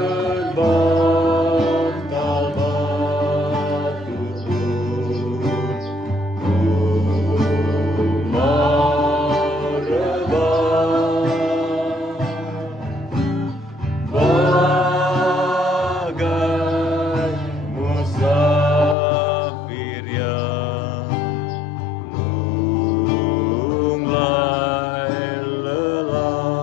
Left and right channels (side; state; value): right; drops out; at 18.9 s